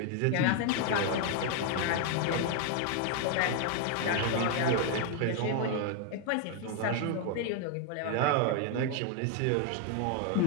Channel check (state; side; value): different; both; correlation 0.00